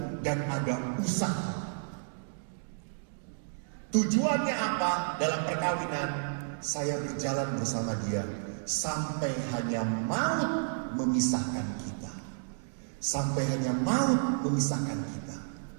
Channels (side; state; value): left; silent; digital silence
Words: dan ada usaha. Tujuannya apa dalam perkawinan? Saya berjalan bersama dia sampai hanya maut memisahkan kita. Sampai hanya maut memisahkan kita.